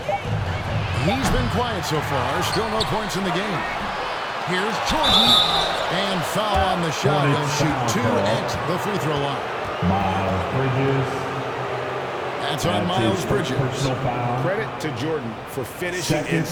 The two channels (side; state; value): both; identical; correlation 1.00